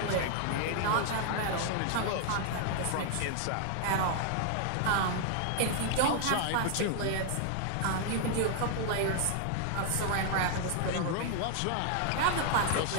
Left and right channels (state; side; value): different; both; correlation 0.00